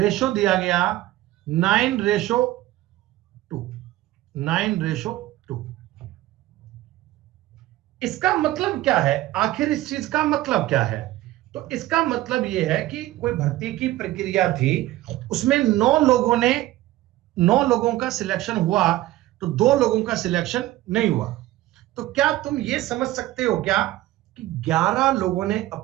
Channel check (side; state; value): left; quieter; 16.2 dB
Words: दिया गया 9:2। 9:2। इसका मतलब क्या है? आखिर इस चीज का मतलब क्या है? तो इसका मतलब यह है कि कोई भर्ती की प्रक्रिया थी, उसमें 9 लोगों का सिलेक्शन हुआ, तो 2 लोगों का सिलेक्शन नहीं हुआ। तो क्या तुम ये समझ सकते हो क्या कि 11 लोगों ने